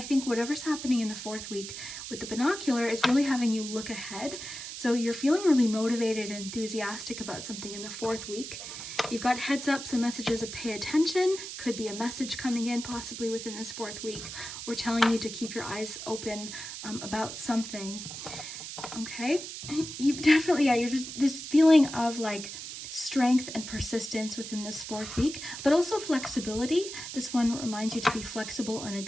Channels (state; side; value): noise; right; hiss, 9 dB below the sound